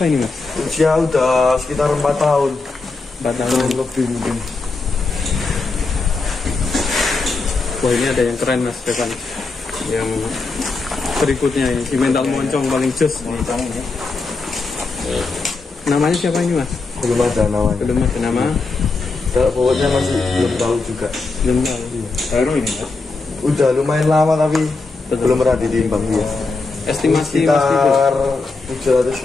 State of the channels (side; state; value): right; quieter; 3.8 dB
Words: ini mas? Usia udah sekitar 4 tahun. 4 tahun. Lebih mungkin. Wah ini ada yang keren mas depan. Yang berikutnya ini si mental moncong paling jos. Moncong ya. Namanya siapa ini mas? Belum ada namanya. Belum ada nama. Kalau bobotnya masih belum tahu juga. Belum tahu. Baru ini ya. Udah lumayan lama tapi Betul. belum pernah ditimbang dia. Estimasi mas Tibo. Sekitar